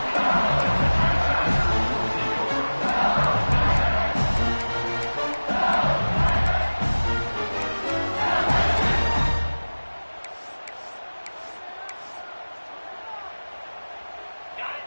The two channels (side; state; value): both; inverted; correlation -1.00